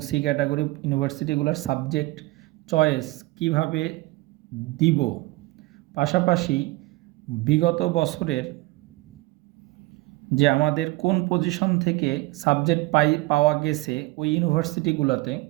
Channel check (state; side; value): quieter; left; 21.0 dB